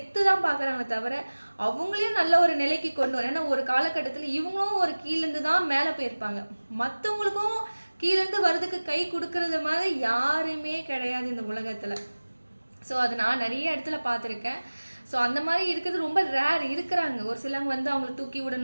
தான் பார்க்குறாங்களே தவிர, அவங்களையும் நல்ல ஒரு நிலைக்கு கொண்டு வரணும். ஏன்னா ஒரு காலகட்டத்தில இவங்களும் ஒரு கீழேருந்து தான் மேல போயிருப்பாங்க. மத்தவங்களுக்கும் கீழேருந்து வரதுக்கு கை குடுக்குறது மாதிரி யாருமே கிடையாது இந்த உலகத்துல. ஸோ அது நான் நிறைய இடத்துல பார்த்துருக்கேன். ஸோ அந்த மாதிரி இருக்கிறது ரொம்ப ரேர் இருக்கிறாங்க. ஒரு சிலவங்க வந்து அவங்கள தூக்கி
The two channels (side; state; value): both; inverted; correlation -1.00